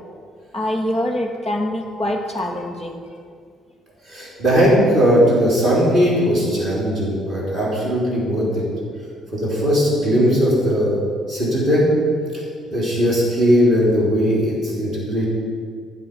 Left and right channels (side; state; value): both; normal; correlation 0.66